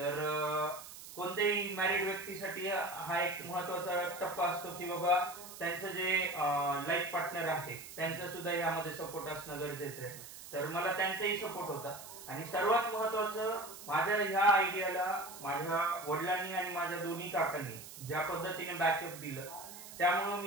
कोणत्याही मॅरिड व्यक्तीसाठी हा एक महत्वाचा टप्पा असतो की बाबा त्यांचं जे लाईफ पार्टनर आहे त्यांचं सुद्धा यामध्ये सपोर्ट असणं गरजेचं आहे. तर मला त्यांचाही सपोर्ट होता. आणि सर्वात महत्वाचं माझ्या ह्या आयडियाला माझ्या वडिलांनी आणि माझ्या दोन्ही काकांनी ज्या पद्धतीने बॅकअप दिलं, त्यामुळे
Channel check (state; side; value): noise; right; hiss, 14 dB below the sound